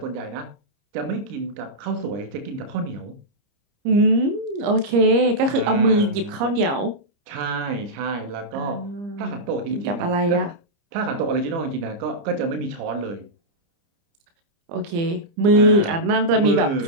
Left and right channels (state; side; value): late; left; 30 ms